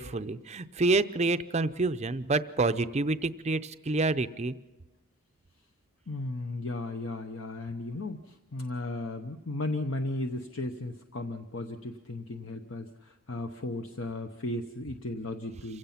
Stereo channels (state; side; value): normal; both; correlation 0.47